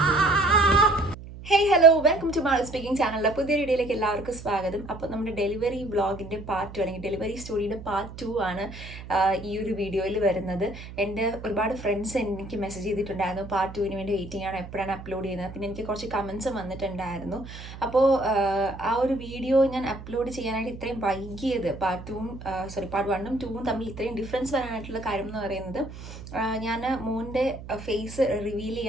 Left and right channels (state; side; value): noise; right; hum, 13 dB below the sound